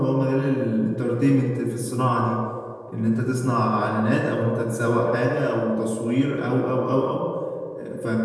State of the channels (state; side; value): identical; both; correlation 1.00